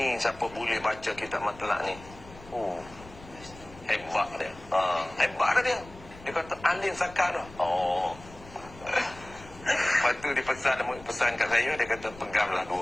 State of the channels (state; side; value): noise; left; rumble, 19 dB below the sound